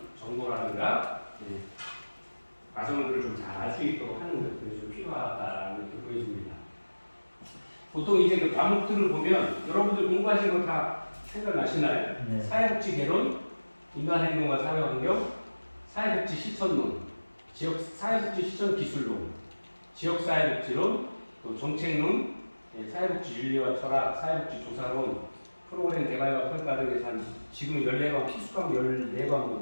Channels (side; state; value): both; inverted; correlation -1.00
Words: 정보라든가 과정들을 좀 잘 알 수 있도록 하는 것들이 좀 필요하다는 게 보여집니다. 보통 이제 그 과목들을 보면 여러분들 공부하신 거 다 생각나시나요? 네. 사회복지 개론, 인간행동과 사회환경, 사회복지 실천론, 사회복지 실천 기술론, 지역사회복지론, 또 정책론, 사회복지 윤리와 철학, 사회복지 조사론, 프로그램 개발과 평가 등에서 한 지금 14과목, 필수과목